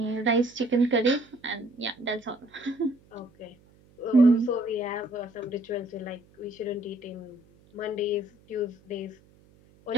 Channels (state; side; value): noise; right; hum, 29 dB below the sound